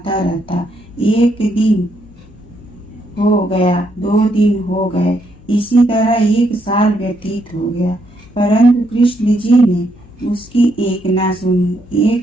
रहता। एक दिन हो गया, 2 दिन हो गए, इसी तरह 1 साल व्यतीत हो गया। परंतु कृष्ण जी ने उसकी एक न सुनी।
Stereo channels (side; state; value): left; noise; hum, 26 dB below the sound